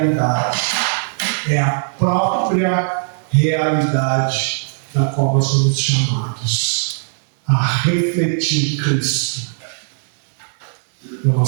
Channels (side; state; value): left; silent; digital silence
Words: É a própria realidade da qual nós somos chamados a refletir Cristo na